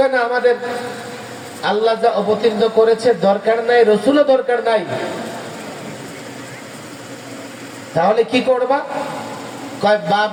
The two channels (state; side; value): identical; both; correlation 1.00